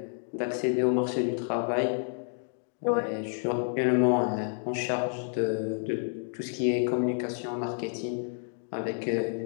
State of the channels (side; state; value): right; silent; 58 dB below the other